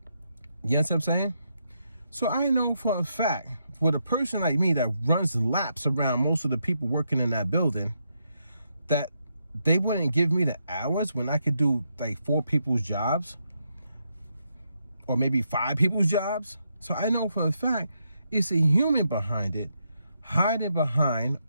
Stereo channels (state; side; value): inverted; both; correlation -0.80